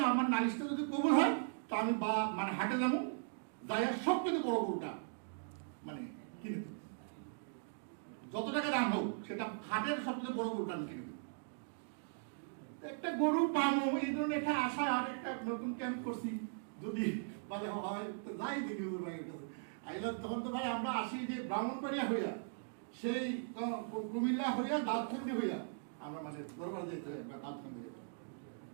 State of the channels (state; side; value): silent; left; digital silence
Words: আমার নালিশটা যদি কবুল হয় তা আমি মানে হাটে যাবো, যাই সব থেকে বড় গরুটা মানে কিনে দেবো, যত টাকা দাম হোক সেটা হাটের সবচেয়ে বড় গরুটা আমি কিনে দেবো। একটা গরু পাবো এই ধরনের একটা আশা, আর একটা নতুন ক্যাম্প করছি, যদি বলে হয় তো যাই দেখি ভাইয়ের কাছে আইলাম। তখন তো ভাই আমরা আসি যে ব্রাহ্মণবাড়িয়া হইয়া, সেই কুমিল্লা হইয়া দাঁতখান্দি হইয়া আমরা মানে দরবার যেতে হয়, দাঁতখান্দি